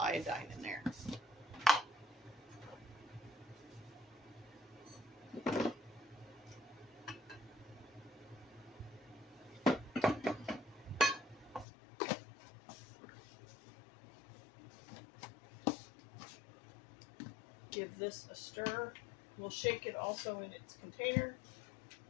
in there. Give this a stir. We'll shake it also in its container.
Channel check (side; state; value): right; drops out; at 11.7 s